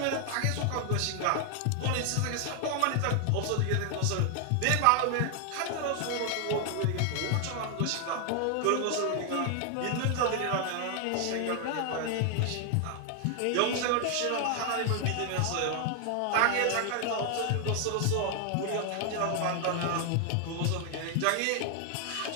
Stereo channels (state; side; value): different; both; correlation 0.00